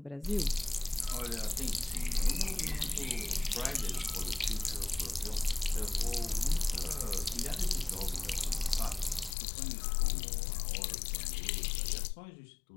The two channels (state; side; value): drops out; right; at 9.3 s